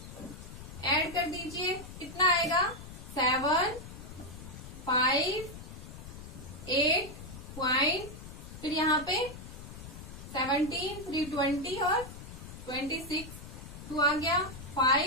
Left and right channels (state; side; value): noise; left; rumble, 13 dB below the sound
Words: ऐड कर दीजिए, कितना आएगा 7, 5, 8 पॉइंट, फिर यहाँ पे 17, 320 और 26, 2 आ गया